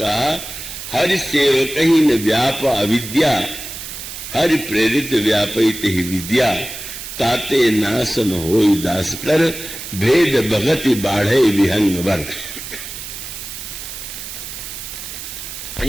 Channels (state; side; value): noise; right; hiss, 10 dB below the sound